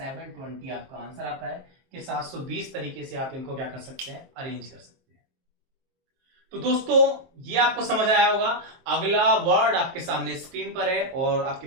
आपका आंसर आता है, कि 720 तरीके से आप इनको क्या कर सकते हैं, अरेंज कर सकते हैं। तो दोस्तों, ये आपको समझ आया होगा। अगला वर्ड आपके सामने स्क्रीन पर है और आपके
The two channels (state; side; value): late; left; 23 ms